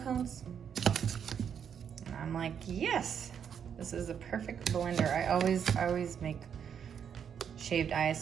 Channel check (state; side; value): quieter; left; 7.9 dB